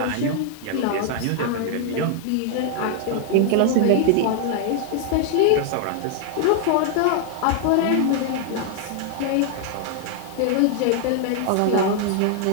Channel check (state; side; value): different; both; correlation 0.00